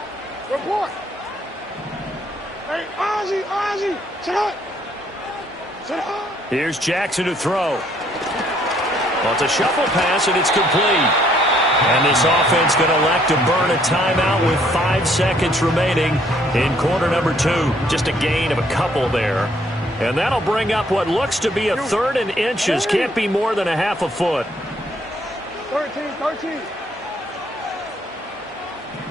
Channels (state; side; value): normal; both; correlation 0.66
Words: Hey, Ozzie, sit up. Here's Jackson to throw. Well, it's a shuffle pass, and it's complete. And this offense going to elect to burn a timeout with 5 seconds remaining in quarter number 2. Just a gain of a couple there. And that'll bring up what looks to be a 3rd and inches. Can't be more than a half a foot. 13.